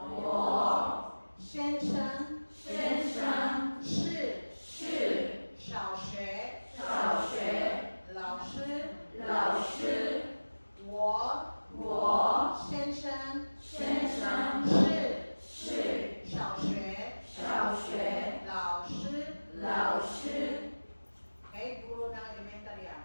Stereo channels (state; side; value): inverted; both; correlation -1.00